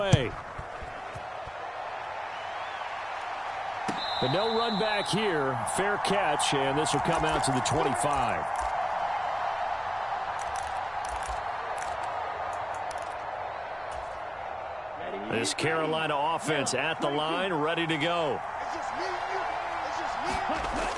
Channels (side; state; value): both; identical; correlation 1.00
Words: But no run back here. Fair catch, and this will come out to the 25. This Carolina offense at the line, ready to go.